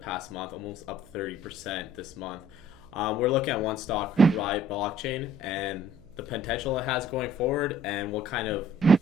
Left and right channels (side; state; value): right; noise; hum, 26 dB below the sound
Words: month, almost up 30% this month, we're looking at one stock, Riot Blockchain, and the potential it has going forward and what kind of